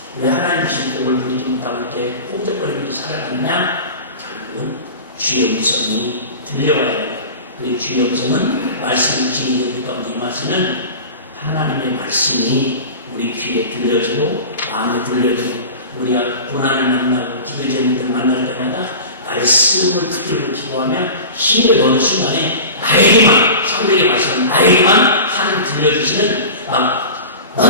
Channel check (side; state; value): both; inverted; correlation -0.34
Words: 왜 하나님 주신 복을 누리지 못하고 이렇게 꼼짝거리면서 살아가느냐? 결국은 주의 음성이 들려와야 된다. 그리고 주의 음성은 말씀 주신 우리 가운데 임하시는 하나님의 말씀이 우리 귀에 들려주고 마음에 들려주고 우리가 고난을 만나고 기도 제목들을 만날 때마다 말씀을 붙들고 기도하면 힘을 얻는 순간에 나에게만 성경의 말씀은 나에게만 하나님 들려주시는 막